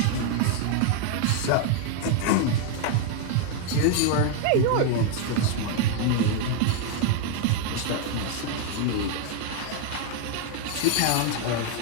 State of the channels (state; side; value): different; both; correlation 0.00